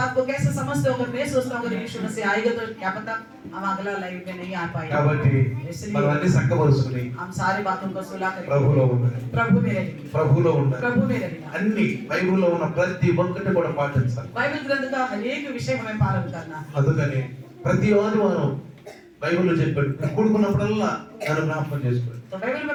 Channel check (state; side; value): identical; both; correlation 1.00